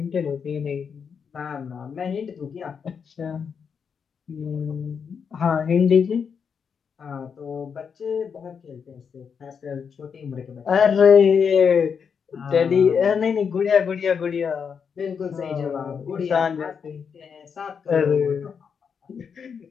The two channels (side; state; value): right; quieter; 6.5 dB